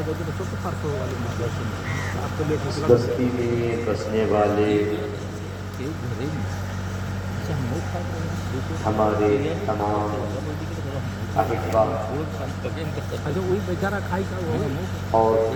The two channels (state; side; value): identical; both; correlation 1.00